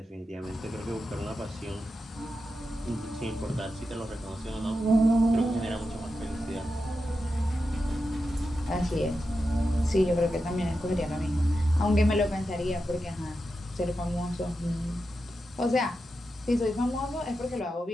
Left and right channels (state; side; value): normal; both; correlation 0.89